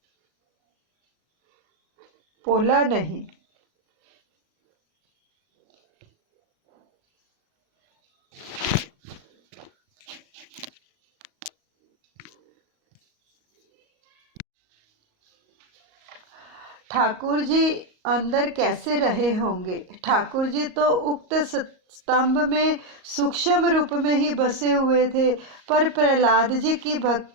पोला नहीं। ठाकुर जी अंदर कैसे रहे होंगे। ठाकुर जी तो उक्त स्तंभ में सूक्ष्म रूप में ही बसे हुए थे, पर प्रहलाद जी की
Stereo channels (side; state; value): left; late; 38 ms